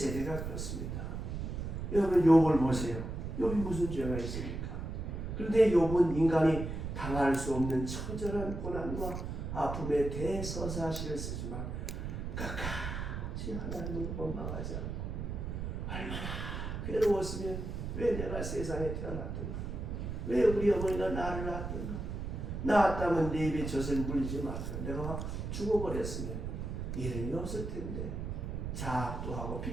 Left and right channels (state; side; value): noise; right; rumble, 5 dB below the sound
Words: 그렇습니다. 여러분 욥을 보세요. 욥이 무슨 죄가 있습니까? 그런데 욥은 인간이 당할 수 없는 처절한 고난과 아픔의 대서사시를 쓰지만 끝까지 하나님을 원망하지 않고 얼마나 괴로웠으면 왜 내가 세상에 태어났던가? 왜 우리 어머니가 나를 낳았던가? 낳았다면 내 입에 젖을 물리지 마서 내가 죽어버렸으면 이름이 없을 텐데 자학도 하고